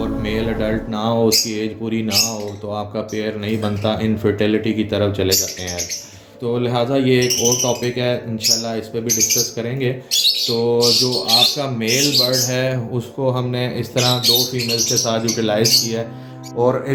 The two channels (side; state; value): both; identical; correlation 1.00